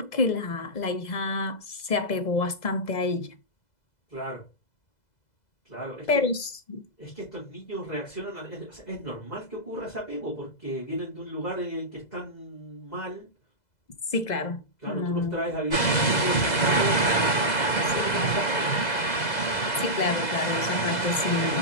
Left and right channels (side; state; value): right; late; 2.0 ms